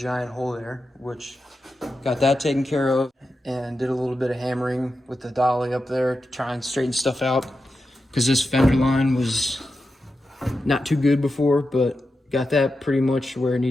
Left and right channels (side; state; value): both; normal; correlation 0.90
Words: hole there, which got that taken care of and did a little bit of hammering with the dolly up there to try and straighten stuff out, because this fender line was not too good before, but got that pretty much where it